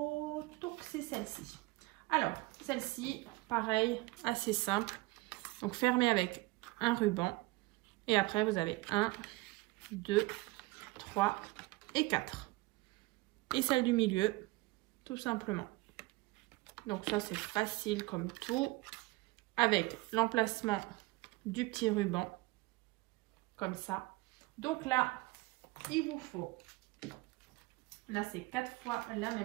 donc c'est celle-ci. Alors, celle-ci, pareil, assez simple. Donc fermée avec un ruban. Et après, vous avez 1, 2, 3 et 4. Et celle du milieu, tout simplement. Donc ça, c'est facile comme tout. Avec l'emplacement du petit ruban, comme ça. Donc là, il vous faut, là c'est 4 fois la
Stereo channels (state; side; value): quieter; left; 21.7 dB